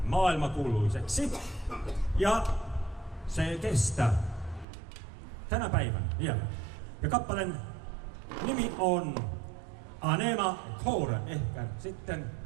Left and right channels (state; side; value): drops out; left; at 4.7 s